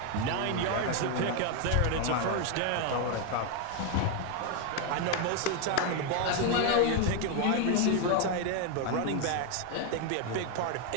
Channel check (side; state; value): both; different; correlation 0.01